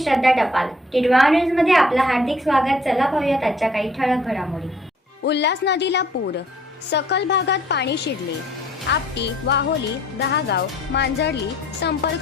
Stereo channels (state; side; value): normal; both; correlation 0.59